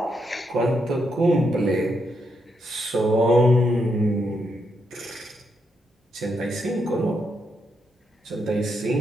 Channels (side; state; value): both; normal; correlation 0.80